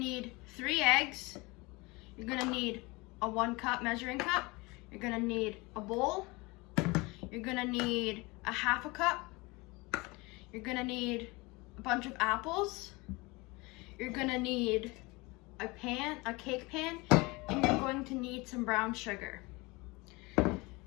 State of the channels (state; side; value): quieter; right; 24.6 dB